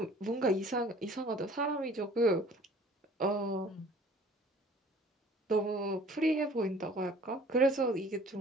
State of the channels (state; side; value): normal; both; correlation 0.51